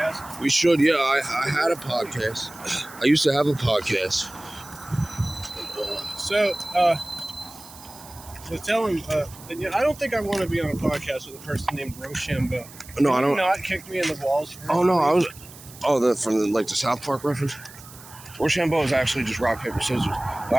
We should, yeah. I had a podcast. I used to have a podcast. So, tell him, I don't think I want to be on a podcast with a person named Rochambeau. No, I don't. Not kick me in the balls. Oh no, I was. Oh, from the South Park reference. Rochambeau is actually just rock paper scissors. But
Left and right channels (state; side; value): noise; right; hiss, 19 dB below the sound